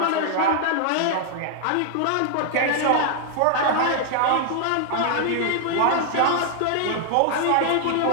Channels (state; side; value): different; both; correlation 0.00